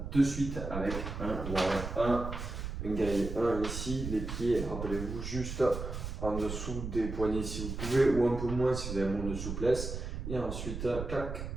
de suite avec un warm-up 1. Un guerrier 1 ici, les pieds, rappelez-vous, juste en dessous des poignets si vous pouvez, ou un peu moins si vous avez moins de souplesse. Et ensuite, clac,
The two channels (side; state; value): right; noise; rumble, 6 dB below the sound